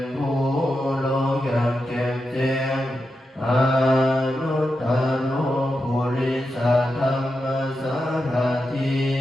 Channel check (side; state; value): both; normal; correlation 0.88